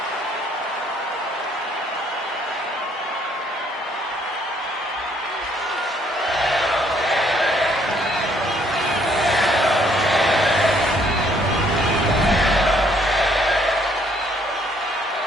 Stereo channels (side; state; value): both; normal; correlation 0.66